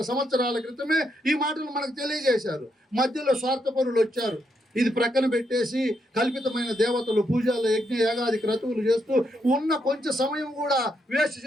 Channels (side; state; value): both; normal; correlation 0.79